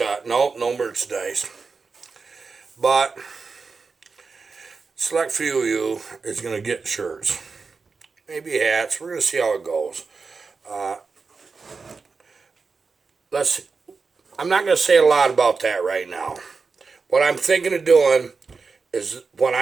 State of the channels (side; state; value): left; quieter; 4.6 dB